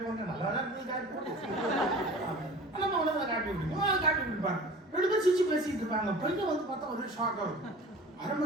ஒன்று நல்லா தான் இருக்கு காட்டி போட்டு நம்ம உடனே காட்டி விட்டுருக்கோம், காட்டி விட்டுருப்பாங்க. 2 பேரும் சிரிச்சு பேசிட்டு இருப்பாங்க. பையன் வந்து பார்த்தா ஒரே ஷாக் ஆகும். 1/2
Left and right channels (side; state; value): both; normal; correlation 0.41